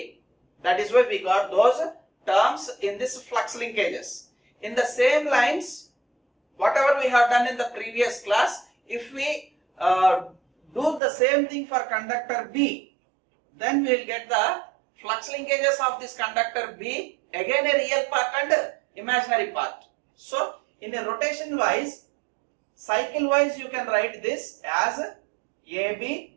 That is why we got those terms in this flux linkages. In the same lines, whatever we have done in the previous class, if we do the same thing for conductor B, then we will get the flux linkages of this conductor B, again a real part and imaginary part. So in a rotation wise, cycle wise, you can write this as AB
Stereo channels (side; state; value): left; drops out; at 11.0 s